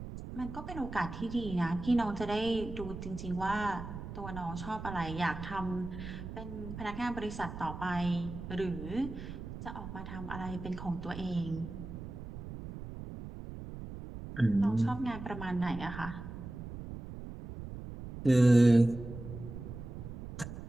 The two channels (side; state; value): right; noise; rumble, 10 dB below the sound